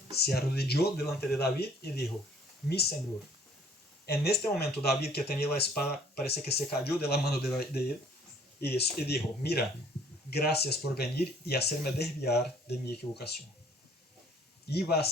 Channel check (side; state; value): both; normal; correlation 0.58